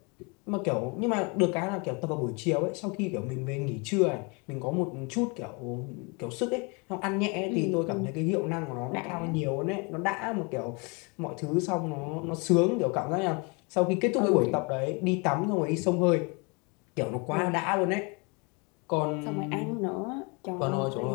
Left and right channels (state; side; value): quieter; right; 31.1 dB